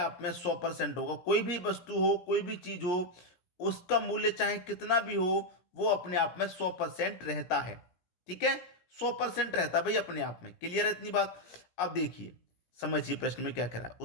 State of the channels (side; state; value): right; late; 17 ms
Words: में 100% होगा। कोई भी वस्तु हो, कोई भी चीज हो, उसका मूल्य चाहे कितना भी हो, वो अपने आप में 100% रहता है। ठीक है, 100% रहता है भाई अपने आप में। क्लियर है इतनी बात। अब देखिए, समझिए प्रश्न में क्या कह रहा है।